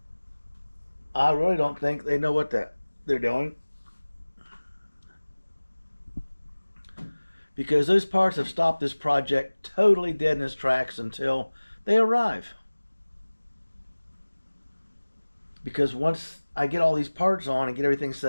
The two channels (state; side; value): inverted; both; correlation -1.00